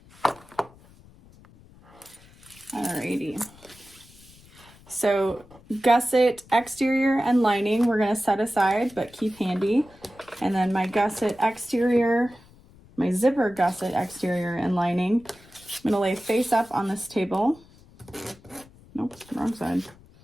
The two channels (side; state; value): left; noise; rumble, 25 dB below the sound